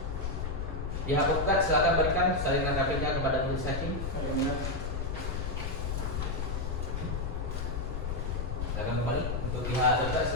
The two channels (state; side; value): noise; left; rumble, 2 dB below the sound